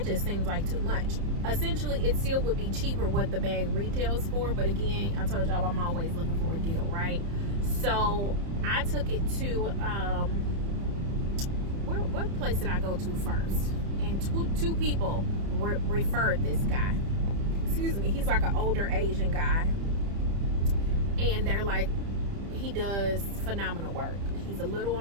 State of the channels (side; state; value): left; late; 30 ms